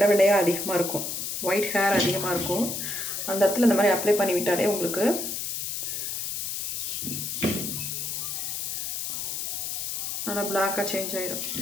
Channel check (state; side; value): noise; left; hiss, 3 dB below the sound